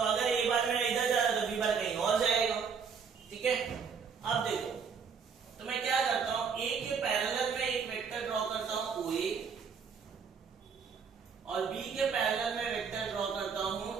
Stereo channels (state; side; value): quieter; left; 6.0 dB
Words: अगर ए बार मेरा इधर जा रहा है तो बी बार कहीं और जाएगा, ठीक है। अब देखो, तो मैं क्या करता हूं, ए के पैरेलल में एक वेक्टर ड्रॉ करता हूं ओ ए, और बी के पैरेलल में वेक्टर ड्रॉ करता हूं